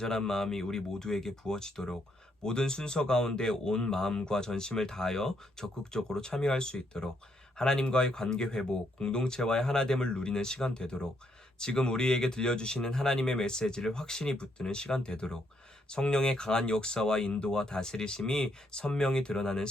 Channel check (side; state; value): both; normal; correlation 0.74